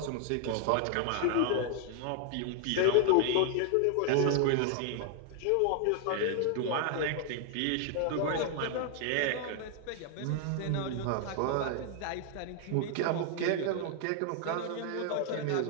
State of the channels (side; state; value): both; different; correlation 0.00